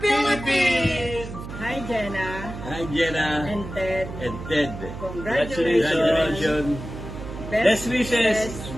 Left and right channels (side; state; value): right; noise; hum, 10 dB below the sound